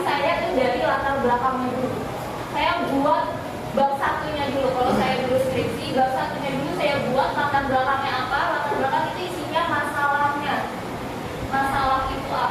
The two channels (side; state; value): both; identical; correlation 1.00